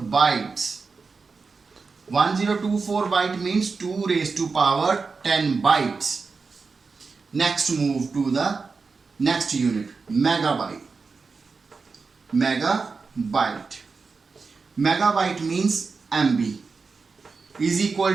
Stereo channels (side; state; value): left; quieter; 4.6 dB